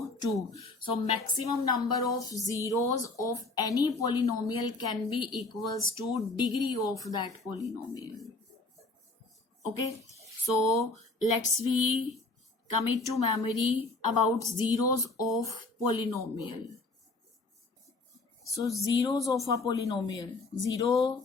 2. So maximum number of zeros of any polynomial can be equals to degree of that polynomial. Okay, so let's commit to memory about zeros of polynomial. So zeros of a polynomial. Zero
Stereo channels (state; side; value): quieter; right; 3.3 dB